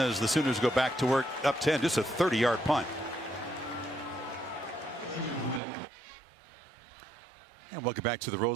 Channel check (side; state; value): left; drops out; at 5.6 s